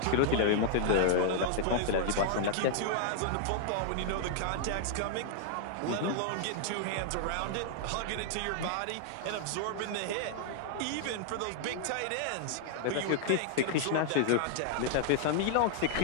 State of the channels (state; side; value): different; both; correlation -0.01